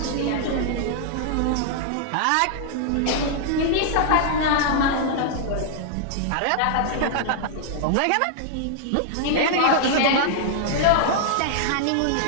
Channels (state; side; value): different; both; correlation -0.01